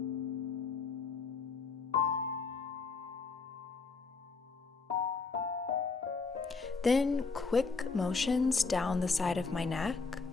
Then quick motions down the side of my neck.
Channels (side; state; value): right; quieter; 4.5 dB